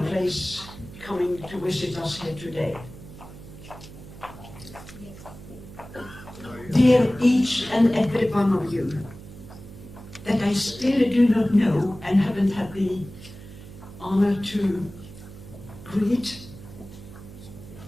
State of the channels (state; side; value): noise; right; hum, 16 dB below the sound